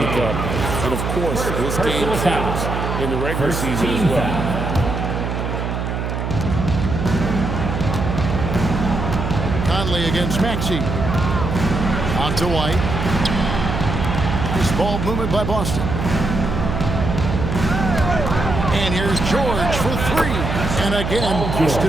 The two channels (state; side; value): noise; right; hum, 3 dB below the sound